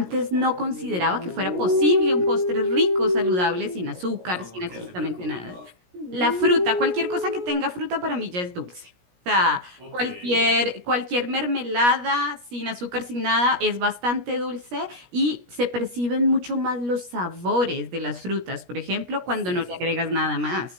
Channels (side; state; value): left; late; 17 ms